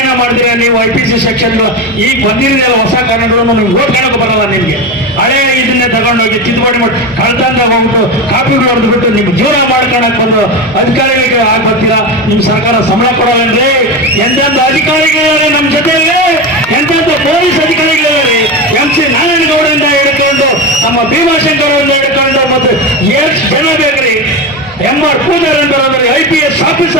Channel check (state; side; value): normal; both; correlation 0.19